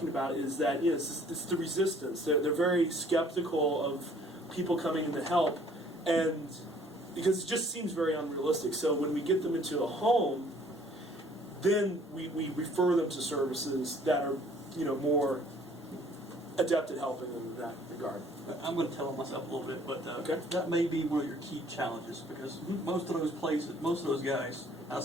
about is that it's the resistance. They're very skeptical of people coming in to help, and because it just seems very unrealistic. So when we get them into a home, then we refer them to services that are more adept at helping them in that regard. I'm going to tell on myself a little bit, but Okay. that may be one of your key challenges because most of those places, most of those guys, I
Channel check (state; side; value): normal; both; correlation 0.57